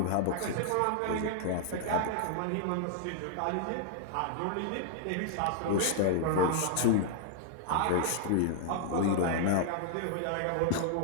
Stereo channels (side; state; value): both; different; correlation -0.01